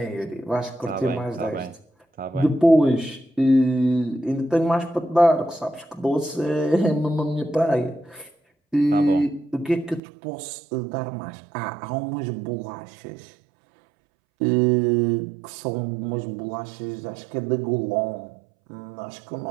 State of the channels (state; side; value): drops out; left; at 10.0 s